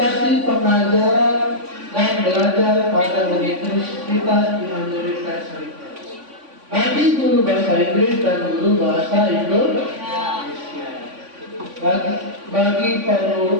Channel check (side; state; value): left; late; 3.5 ms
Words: pengajaran dan belajar pada universitas di Amerika Serikat bagi guru bahasa Inggris dan guru bahasa Indonesia, bagi